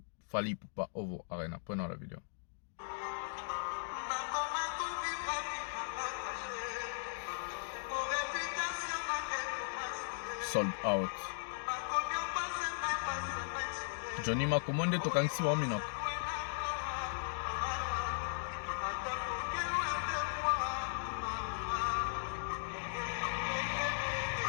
Fally Ipupa Ovo Arena, prenons la vidéo. Sold out. Johnny Makomonde tokangisi wa minoko.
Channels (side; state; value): right; silent; digital silence